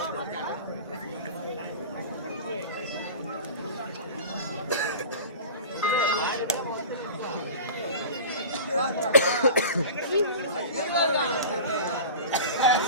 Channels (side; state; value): both; inverted; correlation -0.35